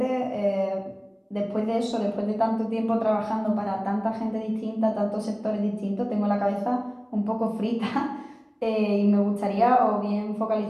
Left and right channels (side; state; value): both; identical; correlation 1.00